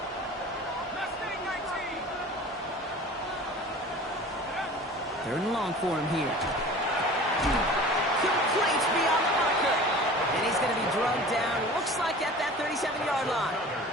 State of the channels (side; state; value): both; normal; correlation 0.41